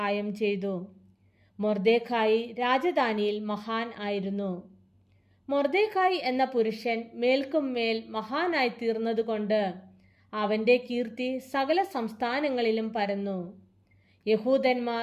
ചെയ്തു. മൊർദെഖായി രാജധാനിയിൽ മഹാൻ ആയിരുന്നു. മൊർദെഖായി എന്ന പുരുഷൻ മേൽക്കും മേൽ മഹാനായി തീർന്നതുകൊണ്ട് അവൻ്റെ കീർത്തി സകല സംസ്ഥാനങ്ങളിലും പരന്നു.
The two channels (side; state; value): both; identical; correlation 1.00